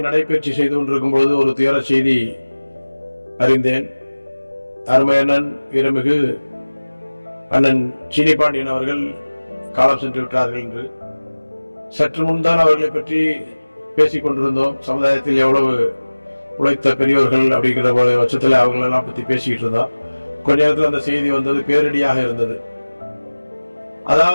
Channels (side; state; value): both; inverted; correlation -1.00